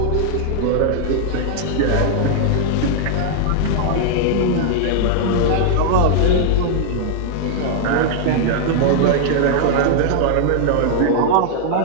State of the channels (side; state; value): both; different; correlation -0.01